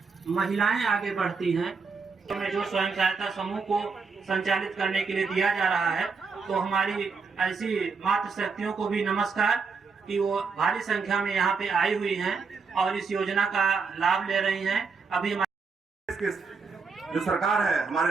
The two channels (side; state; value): left; quieter; 4.9 dB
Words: महिलाएं आगे बढ़ती हैं तो जो स्वयं सहायता समूह को संचालित करने के लिए दिया जा रहा है, तो हमारी ऐसी मातृ शक्तियों को भी नमस्कार कि वो भारी संख्या में यहाँ पे आई हुई हैं और इस योजना का लाभ ले रही हैं। अभी हमारे जो सरकार है,